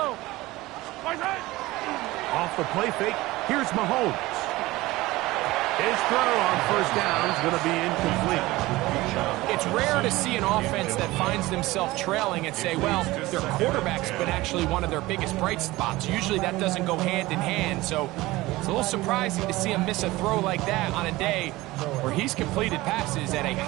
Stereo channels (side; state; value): left; quieter; 19.2 dB